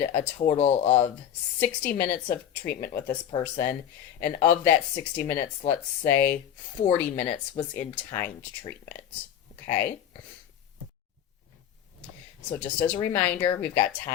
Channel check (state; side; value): quieter; right; 9.9 dB